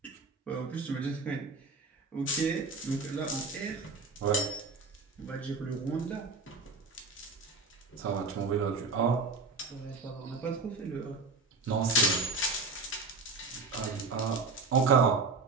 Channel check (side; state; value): left; quieter; 3.9 dB